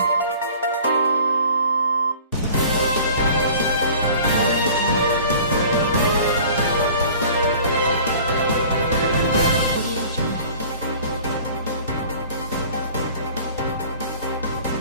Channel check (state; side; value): inverted; both; correlation -0.46